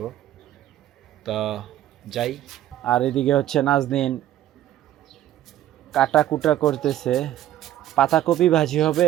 তো যাই। আর এদিকে হচ্ছে নাজনীন কাটা কুটা করতেছে। পাতাকপি ভাজি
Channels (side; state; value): left; quieter; 12.6 dB